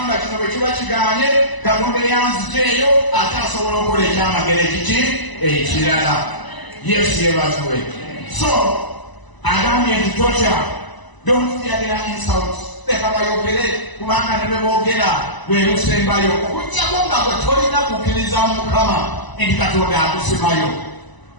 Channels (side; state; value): right; late; 1.0 ms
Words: kino bwe kiba kigaanye Katonda eyanzijeeyo ate asobola okukola ekyamagero ekirala. Yesu yebazibwe. So agambye nti totya. Don't fear their insults. Leka bayogere kubanga ne bwe boogera lwe lusembayo okuggyako nga gwe tolina kukkiriza Mukama nti Katonda akusimayo.